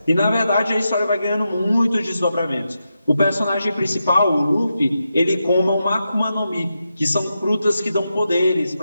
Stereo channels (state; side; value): inverted; both; correlation -0.87